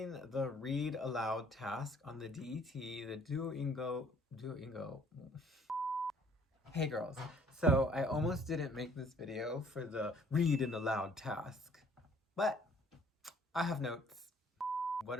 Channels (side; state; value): both; normal; correlation 0.59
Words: The read aloud task on the DET, the Duolingo. Hey girls, so I almost didn't make this video for the read and aloud task, but I have notes.